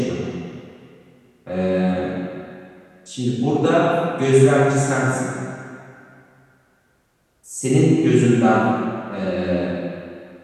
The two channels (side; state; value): both; identical; correlation 1.00